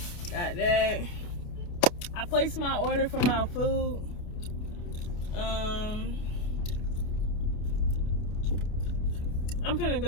I placed my order for my food. I'm finna go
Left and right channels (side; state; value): right; late; 29 ms